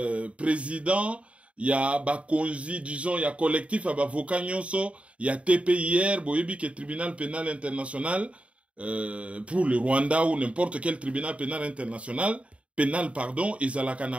président ya ba konzi disons ya collectif ya ba avocat nyonso ya TPIR boyebi ke tribunal pénal international pour le Rwanda ou n'importe quel tribunal pénal international pardon,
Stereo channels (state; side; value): late; left; 0.063 ms